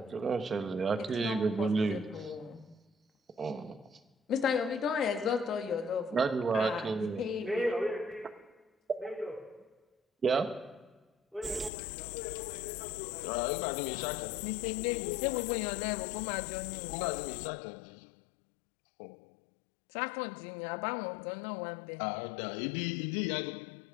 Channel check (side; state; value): right; drops out; at 11.7 s